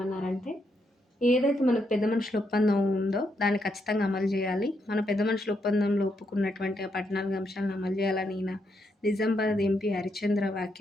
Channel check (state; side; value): normal; both; correlation 0.79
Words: ఏదైతే మనకు పెద్ద మనుషుల ఒప్పందం ఉందో దాన్ని ఖచ్చితంగా అమలు చేయాలి. మన పెద్ద మనుషుల ఒప్పందంలో ఒప్పుకున్నటువంటి ఆ 14 అంశాలను అమలు చేయాలని ఈయన నిజామాబాద్ ఎంపీ హరిశ్చంద్ర